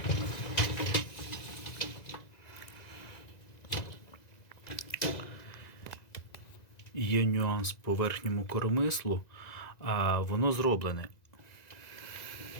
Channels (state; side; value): late; right; 1.9 ms